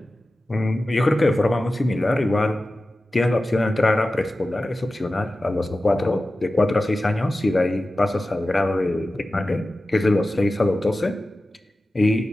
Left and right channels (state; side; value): normal; both; correlation 0.95